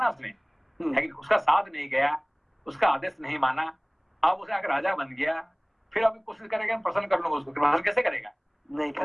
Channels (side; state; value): both; identical; correlation 1.00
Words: उसने, है कि उसका साथ नहीं गया, उसका आदेश नहीं माना, अब उसे आकर राजा बन गया, फिर अभी कोशिश करेगा प्रसन्न कर लूंगा उसको, प्रसन्न कैसे करेगा, नहीं